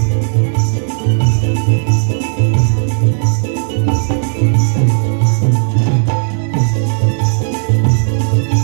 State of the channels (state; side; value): silent; left; digital silence